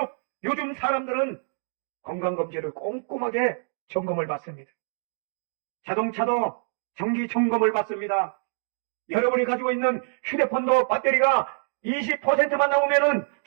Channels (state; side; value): silent; left; digital silence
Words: 요즘 사람들은 건강검진을 꼼꼼하게 점검을 받습니다. 자동차도 정기 점검을 받습니다. 여러분이 가지고 있는 휴대폰도 배터리가 20%만 나오면은